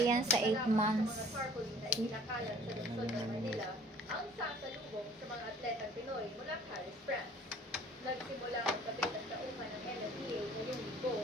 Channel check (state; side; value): normal; both; correlation 0.51